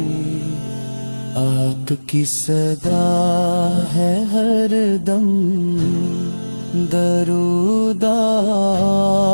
آپ کی صدا ہے ہر دم درود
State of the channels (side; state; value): both; inverted; correlation -1.00